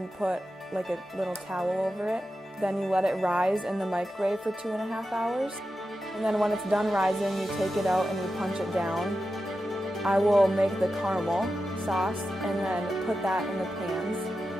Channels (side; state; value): both; normal; correlation 0.91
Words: put like a little towel over it. Then you let it rise in the microwave for 2.5 hours. And then when it's done rising, you take it out and you punch it down. I will make the caramel sauce and then put that in the pans.